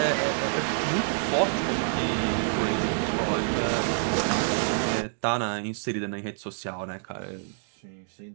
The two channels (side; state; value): left; silent; digital silence